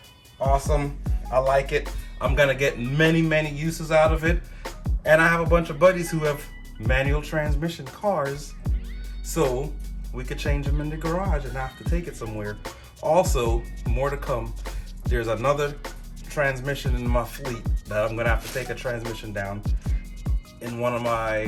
Awesome. I like it. I'm gonna get many uses out of it. And I have a bunch of buddies who have manual transmission cars, so we could change them in the garage and not have to take it somewhere. Also, more to come. There's another transmission in my fleet that I'm gonna have to take a transmission down in one of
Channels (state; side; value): identical; both; correlation 1.00